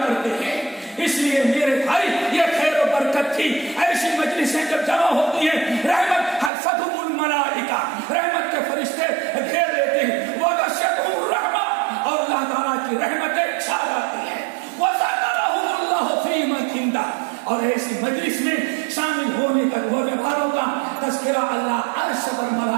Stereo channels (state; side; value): drops out; left; at 6.5 s